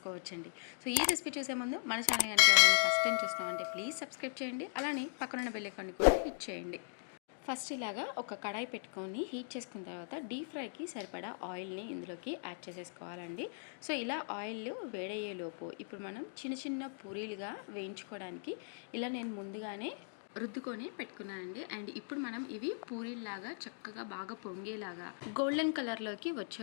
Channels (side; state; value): right; silent; digital silence